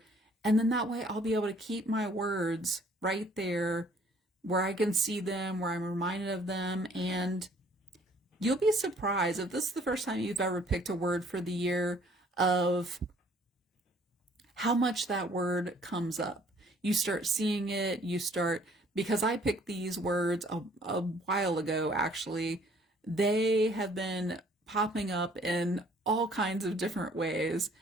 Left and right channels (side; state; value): both; normal; correlation 0.59